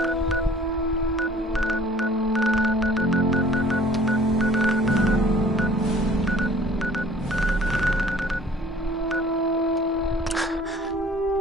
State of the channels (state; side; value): normal; both; correlation 0.52